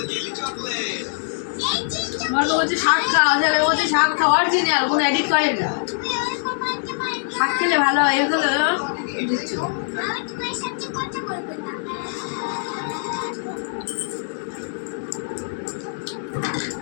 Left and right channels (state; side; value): silent; right; digital silence